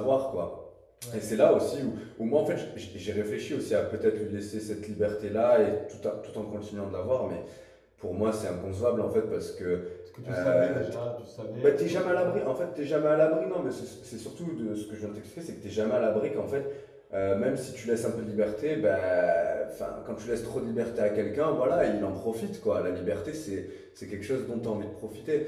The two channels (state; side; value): identical; both; correlation 1.00